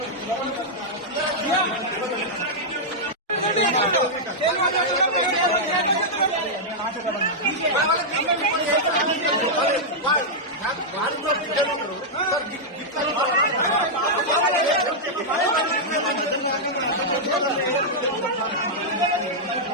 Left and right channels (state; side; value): normal; both; correlation -0.07